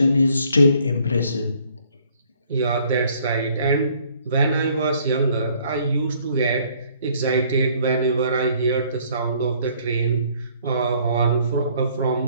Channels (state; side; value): inverted; both; correlation -0.62